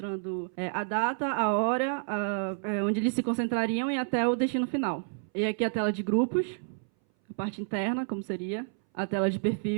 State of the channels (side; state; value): left; silent; 58 dB below the other